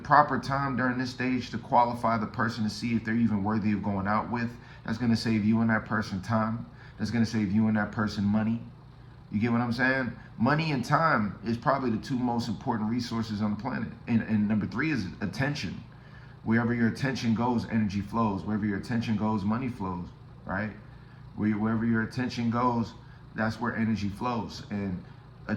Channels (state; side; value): identical; both; correlation 1.00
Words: time during this stage to qualify the person to see if they're even worthy of going out with, that's going to save you and that person time. That's going to save you and that person money. You get what I'm saying? Money and time is probably the two most important resources on the planet. And number three is attention. Wherever your attention goes, energy flows. Wherever your attention goes, money flows, right? Wherever your attention goes, that's where energy flows. And